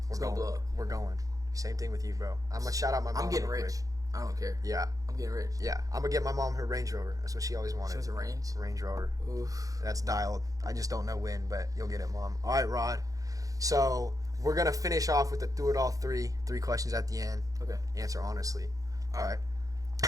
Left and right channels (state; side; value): late; left; 0.17 ms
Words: it's going to blow up. We're going. Same thing with you, bro. I'm going to shout out my mom. I'm getting rich. I don't care. Yeah. I'm getting rich. Yeah. I'm going to get my mom her Range Rover. That's what she always wanted. She wants a Range? Range Rover. Oof. That's dialed. I just don't know when, but you'll get it, Mom. All right, Rod. So we're going to finish off with the Thru It All 3 questions at the end. Okay. Answer honestly. All right.